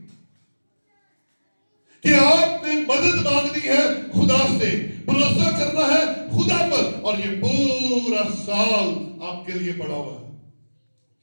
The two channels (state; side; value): inverted; both; correlation -1.00